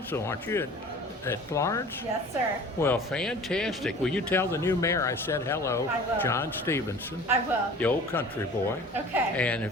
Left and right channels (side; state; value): both; normal; correlation 0.43